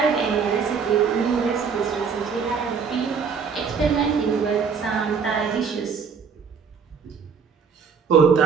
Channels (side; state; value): left; quieter; 6.0 dB